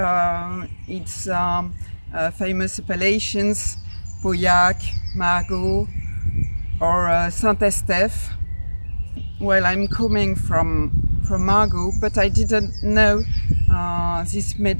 its famous appellations, Pauillac, Margaux, or Saint-Estèphe. Well, I'm coming from Margaux, but I didn't know this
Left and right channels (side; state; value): both; inverted; correlation -1.00